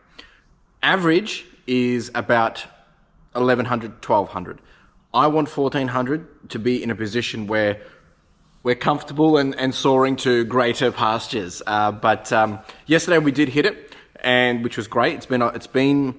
Average is about $1,100, $1,200. I want $1,400 to be in a position where we're comfortable and soaring to greater pastures. But yesterday we did hit it, and which was great. It's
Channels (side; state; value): both; identical; correlation 1.00